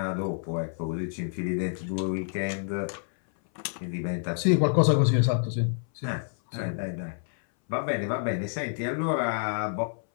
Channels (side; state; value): right; silent; 59 dB below the other